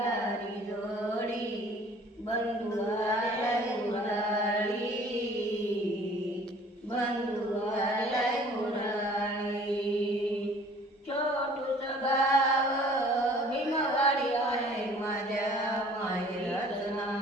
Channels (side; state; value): both; normal; correlation 0.52